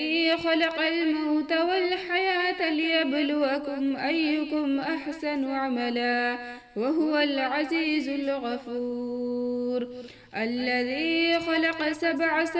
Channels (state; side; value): identical; both; correlation 1.00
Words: خلق الموت والحياة ليبلوكم أيكم أحسن عملا وهو العزيز الغفور، الذي خلق 7